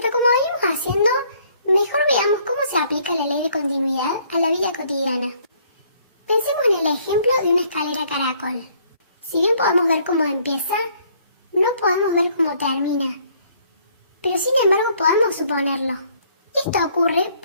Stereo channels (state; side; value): inverted; both; correlation -0.63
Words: como venimos haciendo, mejor veamos cómo se aplica la ley de continuidad a la vida cotidiana. Pensemos en el ejemplo de una escalera caracol. Si bien podemos ver cómo empieza, no podemos ver cómo termina. Pero sin embargo podemos suponerlo. Esto ocurre